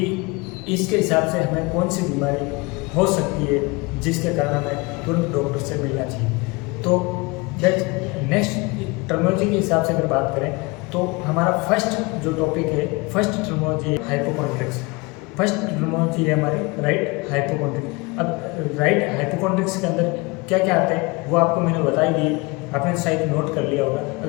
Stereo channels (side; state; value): right; quieter; 25.7 dB